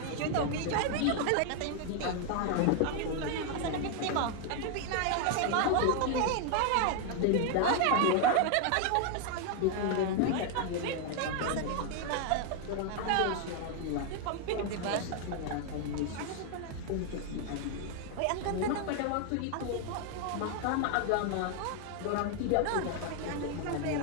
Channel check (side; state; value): both; different; correlation 0.00